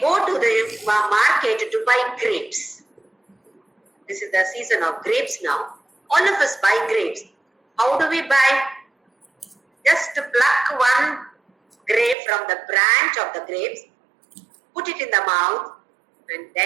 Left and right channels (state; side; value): drops out; left; at 12.2 s